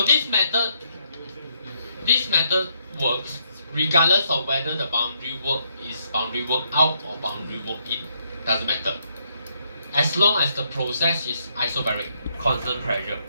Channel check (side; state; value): both; inverted; correlation -0.74